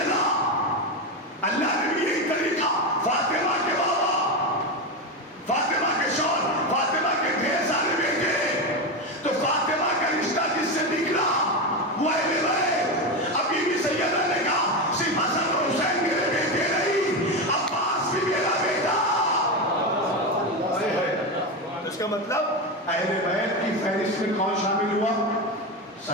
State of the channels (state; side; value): normal; both; correlation 0.15